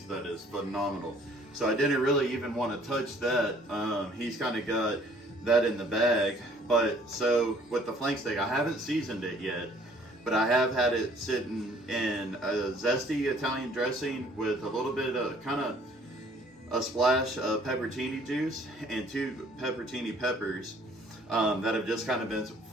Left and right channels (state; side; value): normal; both; correlation 0.57